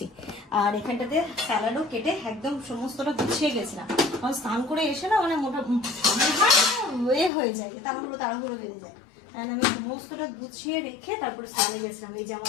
আর এখানটাতে স্যালাডও কেটে একদম সমস্তটা গুছিয়ে গেছিলাম। আমার স্নান করে এসে না মানে মোটা হয়ে যায়, তাড়াহুড়ো বেঁধে যায়। আর আমি সমস্তটা গুছিয়ে রেখে তারপরে স্নানে গেছিলাম। এই যে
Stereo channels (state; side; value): drops out; right; at 7.3 s